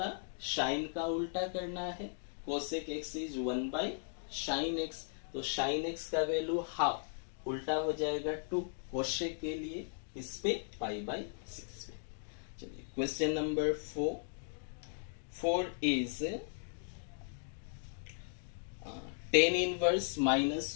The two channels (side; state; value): right; silent; digital silence